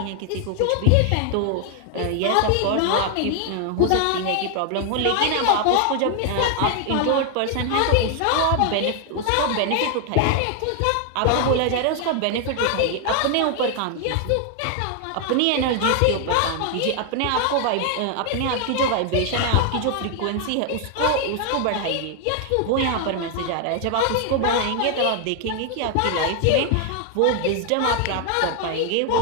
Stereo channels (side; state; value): both; different; correlation 0.00